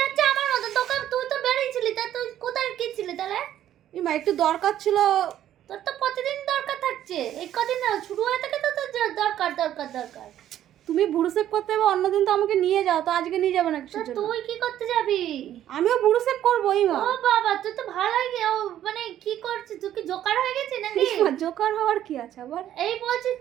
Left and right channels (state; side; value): quieter; left; 11.7 dB